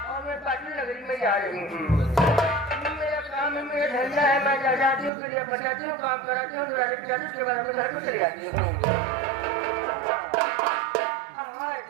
मैं पाटिल नगरी में जा रही हूँ। मेरा काम है, मेरा धंधा है, मैं जाती हूँ फिर बचाती हूँ, काम कराती हूँ, उसके बाद में घर को चली जाती हूँ।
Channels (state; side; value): drops out; left; at 5.1 s